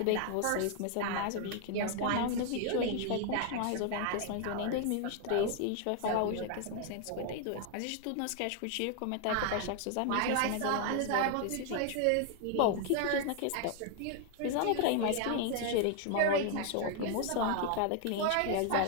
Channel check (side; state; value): both; different; correlation 0.00